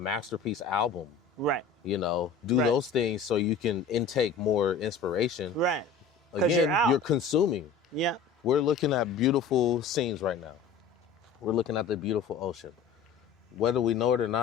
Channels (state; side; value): quieter; right; 5.4 dB